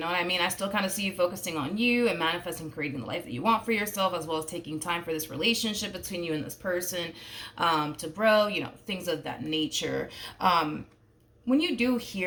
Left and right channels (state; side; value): identical; both; correlation 1.00